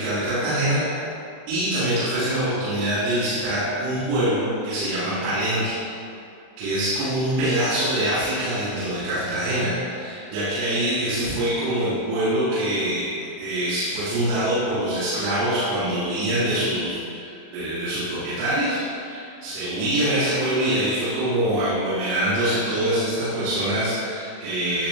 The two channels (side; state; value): left; late; 39 ms